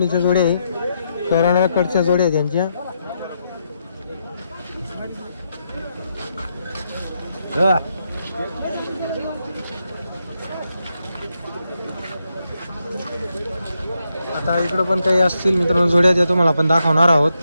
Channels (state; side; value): inverted; both; correlation -0.82